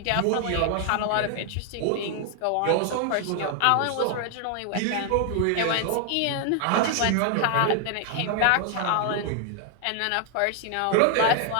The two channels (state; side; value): different; both; correlation 0.00